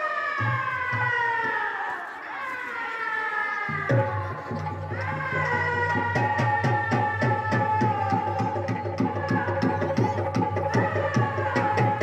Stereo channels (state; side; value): identical; both; correlation 1.00